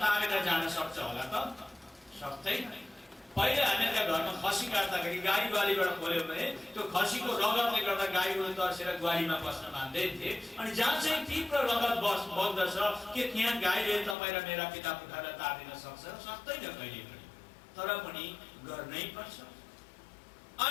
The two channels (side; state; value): right; drops out; at 14.2 s